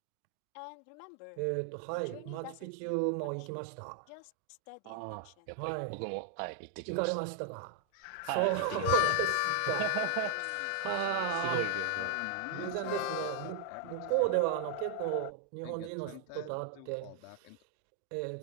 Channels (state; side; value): different; both; correlation 0.00